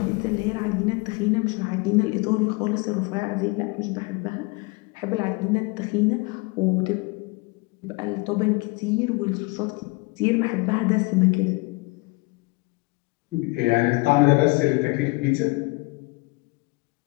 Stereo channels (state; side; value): quieter; right; 26.4 dB